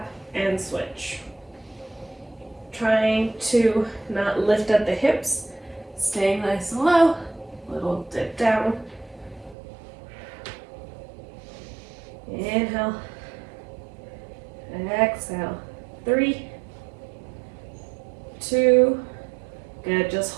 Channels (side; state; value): left; drops out; at 9.6 s